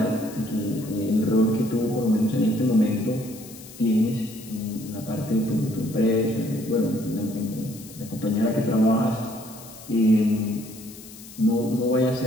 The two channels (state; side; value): noise; left; hiss, 18 dB below the sound